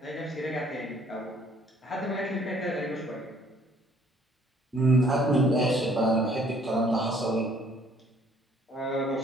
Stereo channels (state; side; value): normal; both; correlation 0.60